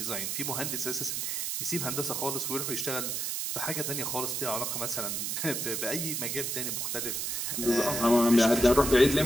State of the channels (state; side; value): noise; right; hiss, 1 dB below the sound